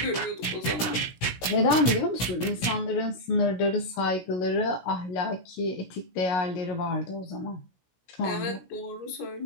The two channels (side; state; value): right; late; 16 ms